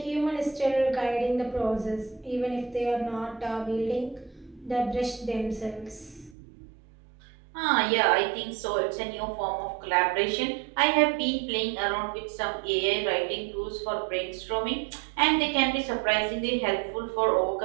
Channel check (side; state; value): left; drops out; at 6.4 s